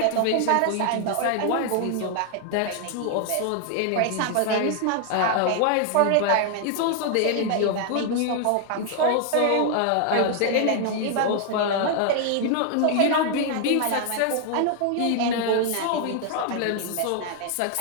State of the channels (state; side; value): different; both; correlation 0.00